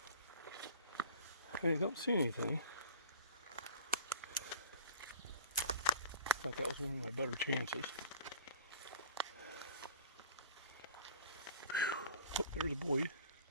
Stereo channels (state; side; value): inverted; both; correlation -0.45